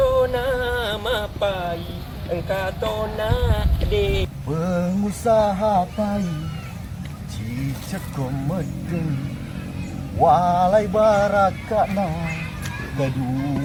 nama pai, engkau tahu nama de. Pengusaha pai, cicak komedeng, walai barakana,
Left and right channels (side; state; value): both; identical; correlation 1.00